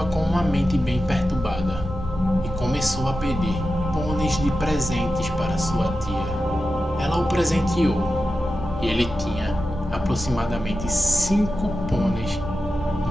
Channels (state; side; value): normal; both; correlation 0.91